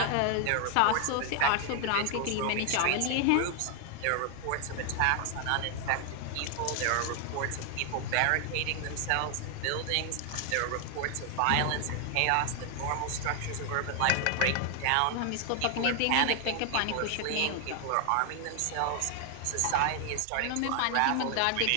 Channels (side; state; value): both; different; correlation 0.00